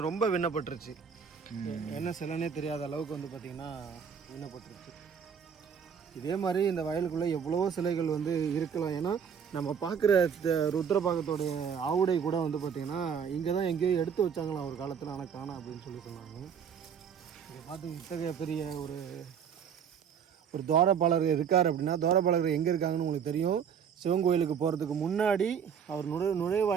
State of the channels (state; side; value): quieter; left; 7.4 dB